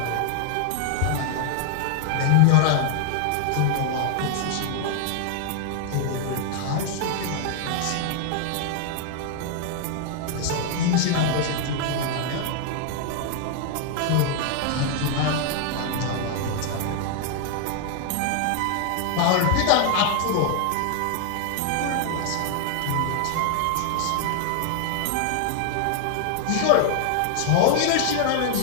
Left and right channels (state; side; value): different; both; correlation 0.00